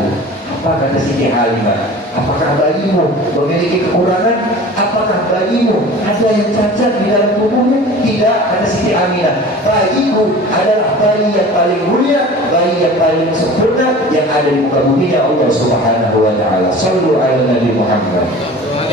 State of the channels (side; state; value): both; normal; correlation 0.40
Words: Apa kata Siti Halimah? Apakah bayimu memiliki kekurangan? Apakah bayimu ada yang cacat di dalam tubuhnya? Tidak, kata Siti Aminah. Bayiku adalah bayi yang paling mulia, bayi yang paling sempurna yang ada di muka bumi Allah Subhanahu wa taala. Shallu ala Nabi Muhammad.